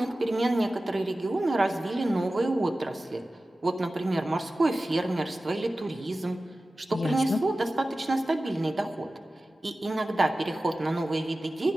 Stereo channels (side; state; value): both; normal; correlation 0.96